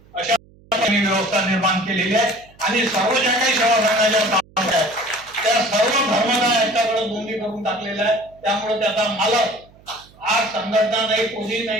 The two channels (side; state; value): right; noise; hum, 27 dB below the sound